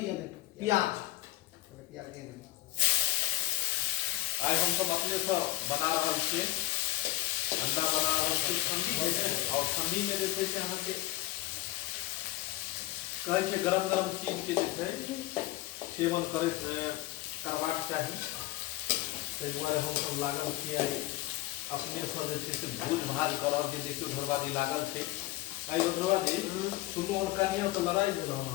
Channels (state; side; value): quieter; right; 17.5 dB